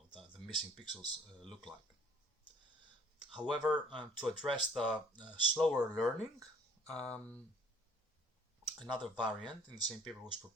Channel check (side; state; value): both; normal; correlation 0.56